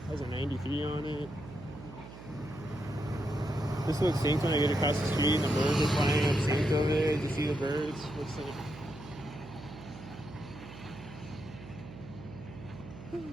Has a 93 on it. This looks synced when I get across the street and the birds are flying up synced over there. Did you see the birds? Looks synced.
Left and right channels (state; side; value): noise; right; hum, 15 dB below the sound